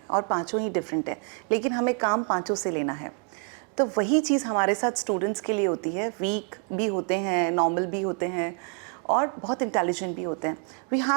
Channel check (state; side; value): quieter; left; 37.7 dB